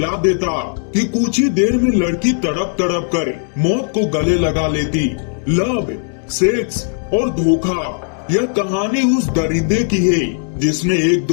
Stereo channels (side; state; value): right; silent; 58 dB below the other